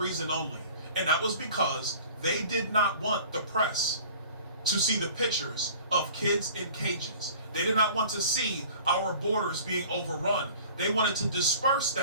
only. And that was because they did not want the press to see the pictures of kids in cages. They did not want to see our borders being overrun. They wanted to disperse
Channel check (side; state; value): both; inverted; correlation -0.45